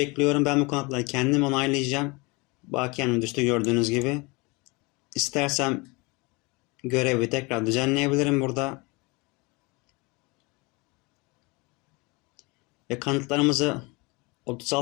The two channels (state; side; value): quieter; right; 26.7 dB